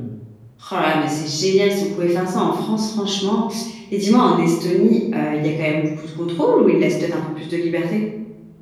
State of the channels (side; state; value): both; identical; correlation 1.00